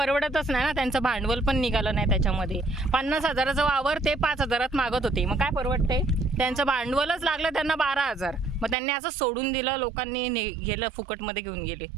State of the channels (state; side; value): drops out; left; at 8.8 s